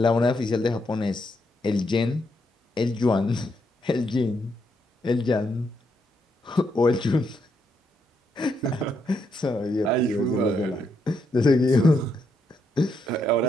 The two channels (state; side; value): normal; both; correlation 0.78